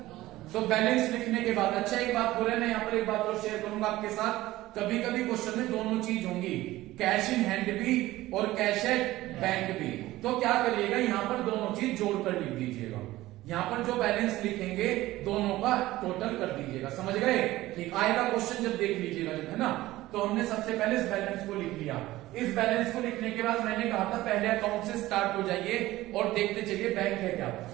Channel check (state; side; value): quieter; left; 16.9 dB